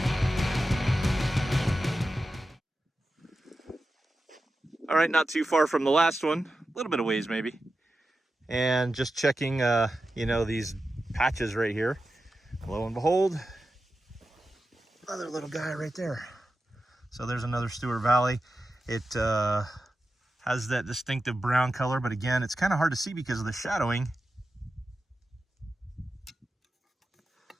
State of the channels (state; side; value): normal; both; correlation 0.92